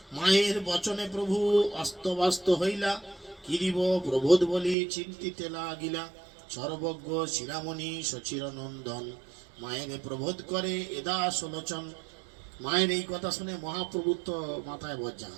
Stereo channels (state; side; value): drops out; left; at 4.8 s